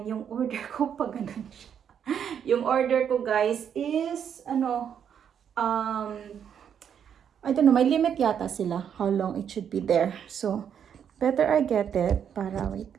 yung order ko pa ganun siya. Yung order ko guys is um I don't know, may limit yata sila how long it should be there. So better I get it para wait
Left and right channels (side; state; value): left; quieter; 8.3 dB